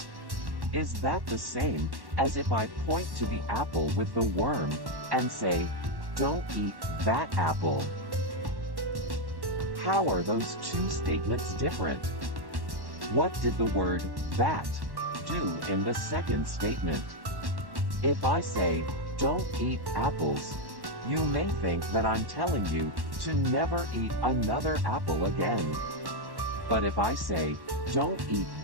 is that the same as if I point to the apple with the worm and say, don't eat that apple? How are those two statements different? What did the word that do in the second statement? If I say, don't eat apples, you may think that I'm telling you to never eat another apple again. But if I say, don't eat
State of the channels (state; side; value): late; left; 1.1 ms